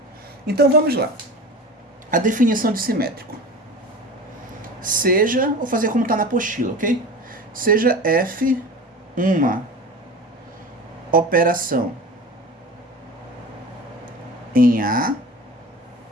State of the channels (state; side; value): normal; both; correlation 0.34